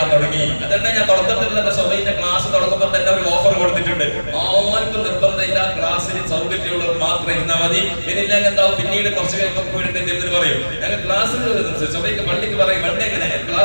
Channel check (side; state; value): both; inverted; correlation -1.00